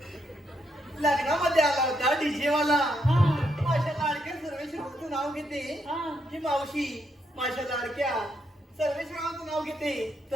लग्नामध्ये आला होता डीजे वाला हा माझ्या लाडक्या सर्वेश्वरावांचं नाव घेते हा ही मावशी माझ्या लाडक्या सर्वेश्वरावांचं नाव घेते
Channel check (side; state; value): both; normal; correlation 0.77